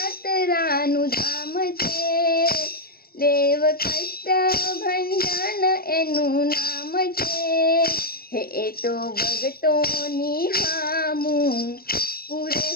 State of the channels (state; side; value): late; right; 0.44 ms